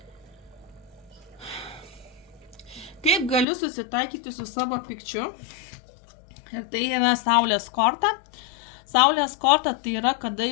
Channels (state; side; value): drops out; right; at 3.5 s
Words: Kaip galiu susitaikyti su savo pykčiu? Ir tai yra Saulės korta. Saulės korta tai yra, kada